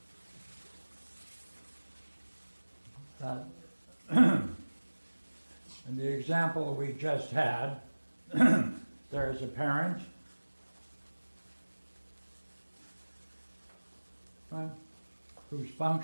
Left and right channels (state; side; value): inverted; both; correlation -1.00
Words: in the example we just had, there is a parent, right, who's